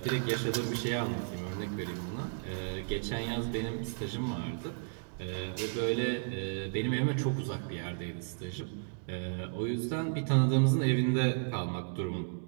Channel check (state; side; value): silent; left; digital silence